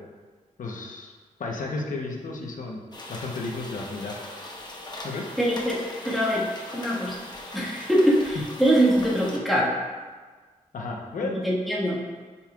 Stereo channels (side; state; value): both; normal; correlation 0.76